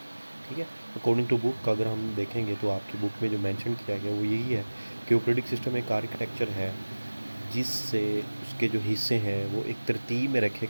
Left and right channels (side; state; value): both; inverted; correlation -1.00